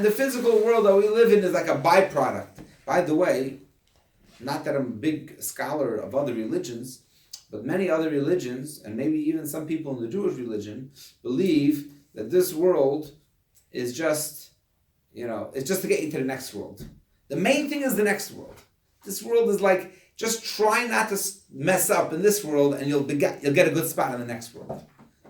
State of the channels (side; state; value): both; identical; correlation 1.00